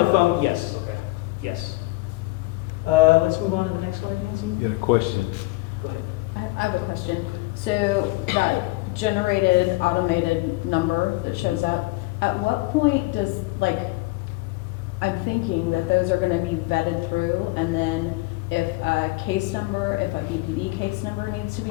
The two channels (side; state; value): right; quieter; 22.0 dB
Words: phone. Yes, Okay. yes. Let's move on to the next slide, Nancy. You had a question? Go ahead. I have a question. So that generated automated number that shows up, at what point does, I'm thinking that those are gonna be vetted through, and then if a BPD case number needs to be